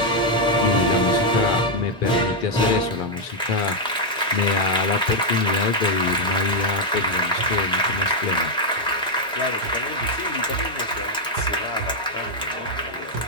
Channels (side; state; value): both; normal; correlation -0.01